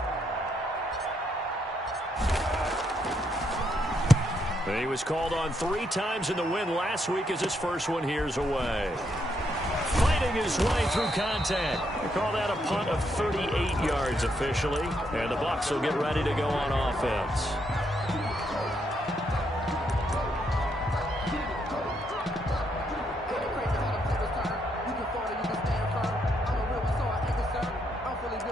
He was called on 3 times in the win last week as his first one here's away. Fighting his way through contact. They call that a punt of 38 yards officially, and the Bucs will get ready to go on offense.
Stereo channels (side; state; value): both; normal; correlation 0.76